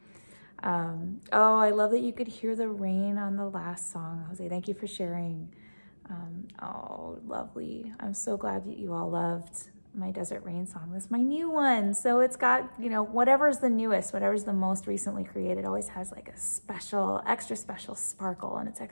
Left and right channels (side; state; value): both; inverted; correlation -1.00